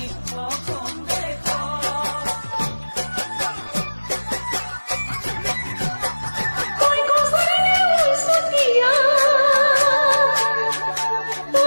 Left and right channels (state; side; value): inverted; both; correlation -1.00